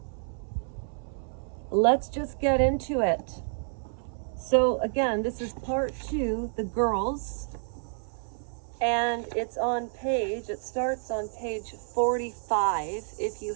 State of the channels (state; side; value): silent; left; 58 dB below the other